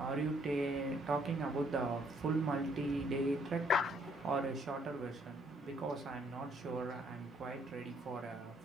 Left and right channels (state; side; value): normal; both; correlation 0.67